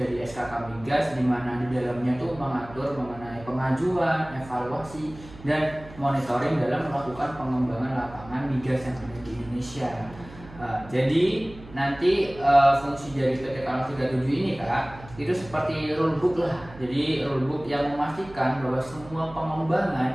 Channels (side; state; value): right; noise; hum, 18 dB below the sound